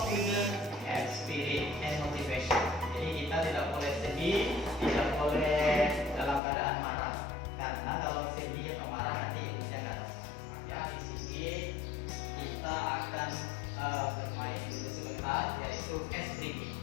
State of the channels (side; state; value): right; drops out; at 6.4 s